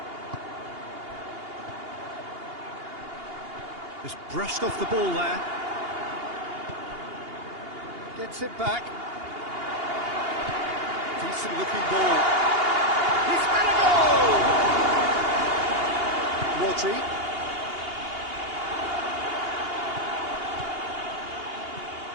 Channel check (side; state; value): left; late; 2.8 ms